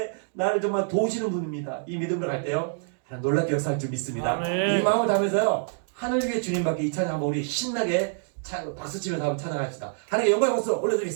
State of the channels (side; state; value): left; silent; digital silence